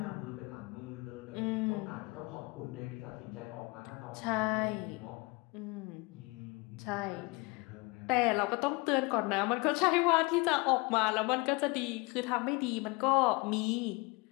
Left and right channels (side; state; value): right; quieter; 26.6 dB